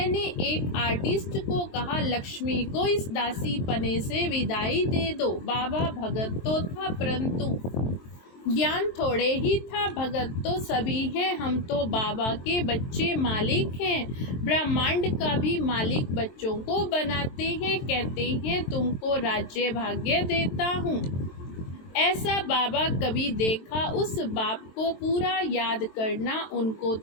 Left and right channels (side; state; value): right; late; 23 ms